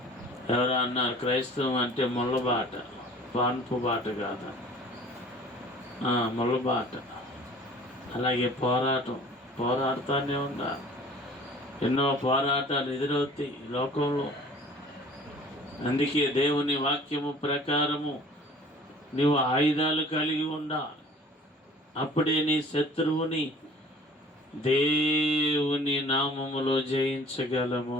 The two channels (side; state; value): both; normal; correlation 0.48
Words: ఎవరో అన్నారు క్రైస్తవం అంటే ముళ్ళబాట, పాన్పు బాట కాదు, ముళ్ళబాట. అలాగే పోరాడుతూనే ఉండాలి. ఎన్నో పోరాటాలు ఎదురవుతాయి ఈ లోకంలో. అందుకే దేవుని వాక్యము ప్రకారము నీవు ఆయుధాలు కలిగి ఉండాలి. అప్పుడే నీ శత్రువుని దేవుని నామములో